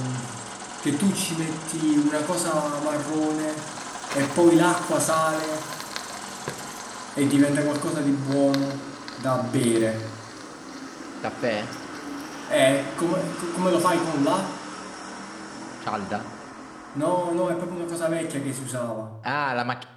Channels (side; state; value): both; identical; correlation 1.00